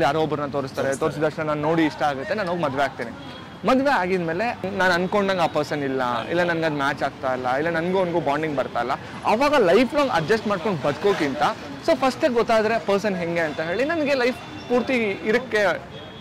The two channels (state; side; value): identical; both; correlation 1.00